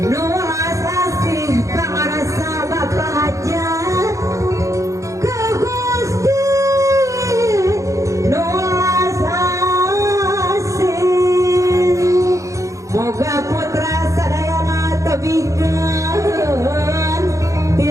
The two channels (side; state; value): left; late; 0.15 ms